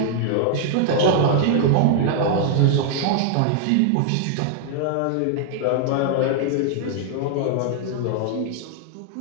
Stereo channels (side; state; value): both; different; correlation -0.01